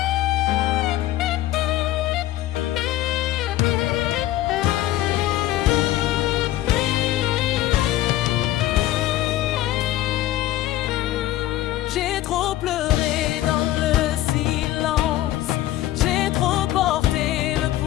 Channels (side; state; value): right; quieter; 14.6 dB